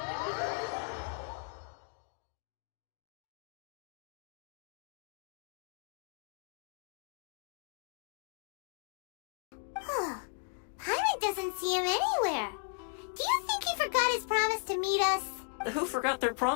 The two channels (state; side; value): silent; right; 54 dB below the other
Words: Paimon doesn't see him anywhere. Do you think he forgot his promise to meet us? Who forgot their